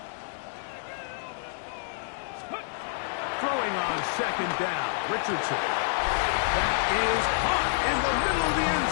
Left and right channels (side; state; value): right; silent; digital silence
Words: Throwing on 2nd down, Richardson. That is caught in the middle of the end